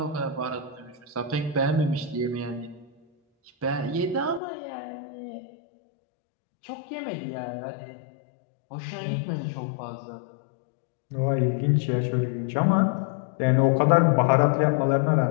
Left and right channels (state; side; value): drops out; right; at 4.4 s